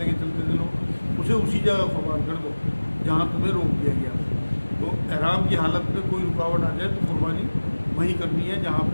کے چلتے تھے لوگ, اسے اسی جگہ قربان کر دو جہاں تمہیں روک دیا گیا. تو احرام کی حالت میں کوئی رکاوٹ آ جائے تو قربانی وہیں کرنی ہے جہاں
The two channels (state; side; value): inverted; both; correlation -1.00